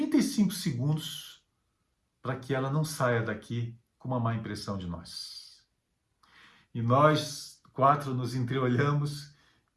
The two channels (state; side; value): identical; both; correlation 1.00